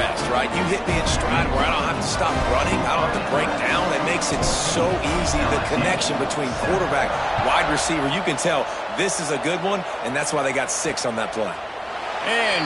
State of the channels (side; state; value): both; identical; correlation 1.00